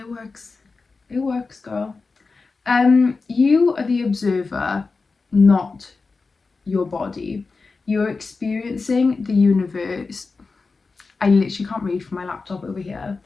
works. It works, girl. You are the observer, not your body. You're experiencing the universe. I literally can't read from my laptop over here.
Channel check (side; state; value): right; quieter; 4.2 dB